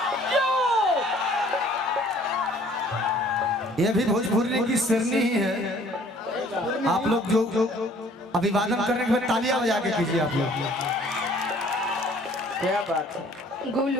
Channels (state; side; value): normal; both; correlation 0.56